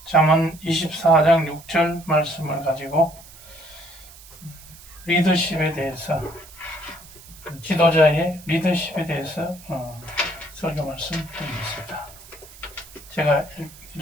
잠언 24장 6절 말씀을 가지고 리더십에 대해서, 지도자의 리더십에 대해서 설교 말씀 드리겠습니다. 제가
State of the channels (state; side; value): noise; right; hiss, 20 dB below the sound